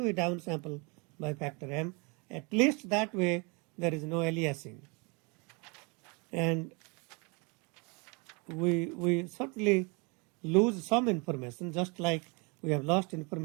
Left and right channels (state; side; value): quieter; left; 30.8 dB